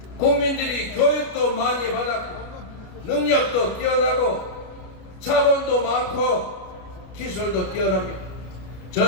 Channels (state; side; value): late; right; 33 ms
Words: 국민들이 교육도 많이 받았고 능력도 뛰어나고 자본도 많고 기술도 뛰어납니다.